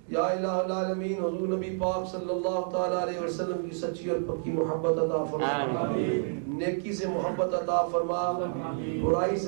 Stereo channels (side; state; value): left; silent; digital silence